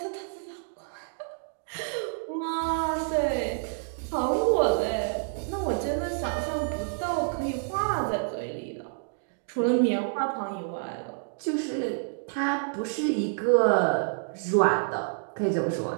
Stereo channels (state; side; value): silent; left; digital silence